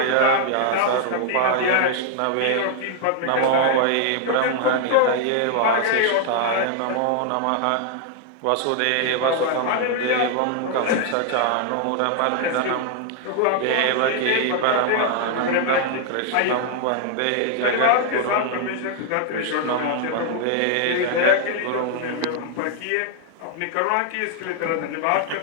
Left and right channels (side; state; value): both; different; correlation 0.00